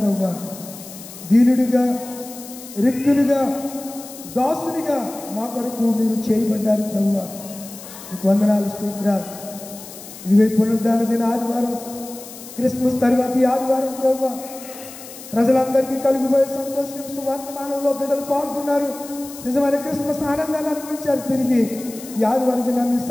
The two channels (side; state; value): left; noise; hiss, 15 dB below the sound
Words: దీనుడిగా, రిక్తునిగా, దాసునిగా మా కొరకు మీరు చేయబడ్డారు ప్రభువా. మీకు వందనాలు, స్తోత్రాలు. ఇదిగో పునరుద్ధాన దిన ఆదివారం, క్రిస్మస్ తర్వాత ఈ ఆదివారం ప్రభువా ప్రజలందరికీ కలిగిపోయే సంతోషం సువార్తమానంలో బిడ్డలు పాల్గొన్నారు. నిజమైన క్రిస్మస్ ఆనందాన్ని అనుభవించారు. తిరిగి ఈ ఆదివారం దినాన్ని